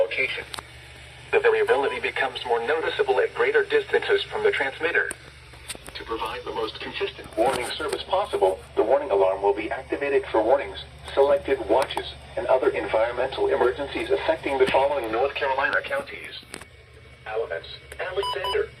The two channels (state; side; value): identical; both; correlation 1.00